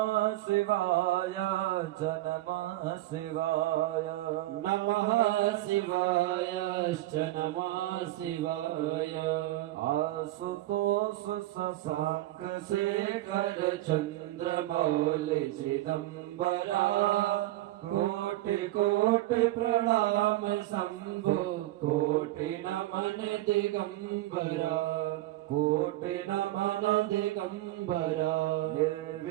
शिवाय च नमः शिवाय नमः शिवायश्च नमः शिवाय आशुतोष शशांक शेखर चन्द्रमौलि चिदम्बरा कोटि कोटि प्रणाम शम्भो कोटि नमन दिगम्बरा कोटि नमन दिगम्बरा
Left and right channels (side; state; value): left; quieter; 16.5 dB